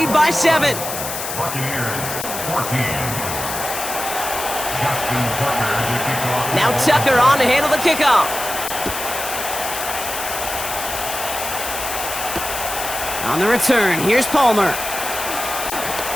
by 7. Buccaneers 14. Now Tucker on to handle the kickoff. On the return, here's Palmer.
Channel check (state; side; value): noise; left; hiss, 6 dB below the sound